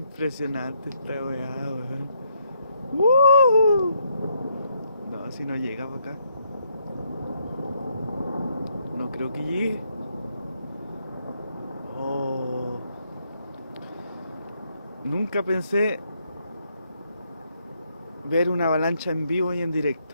esta weá, weón. ¡Woo! No, si no llega para acá. No creo que llegue. Oh. Nunca pensé ver una avalancha en vivo y en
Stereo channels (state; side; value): inverted; both; correlation -0.74